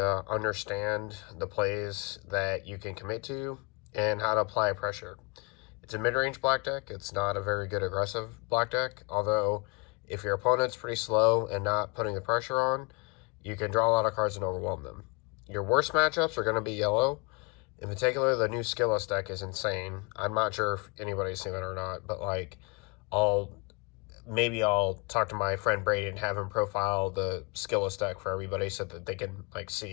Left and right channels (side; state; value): right; quieter; 29.7 dB